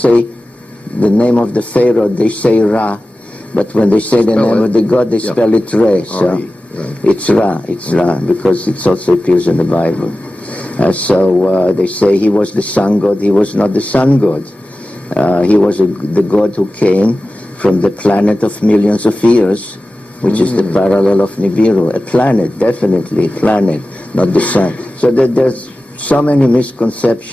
the name of the pharaoh, they say Ra, but when they say the name of the god, they spell it Re. So it's Ra, because it also appears in the Bible. So they say he was the sun god. He was not the sun god. He was the god who came from the planet of millions of years, which is the parallel of Nibiru. A planet, definitely a planet, not the sun. So there's so many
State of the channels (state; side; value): normal; both; correlation 0.95